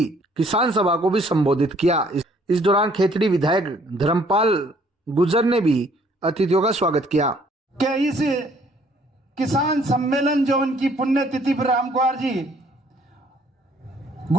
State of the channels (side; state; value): both; normal; correlation 0.62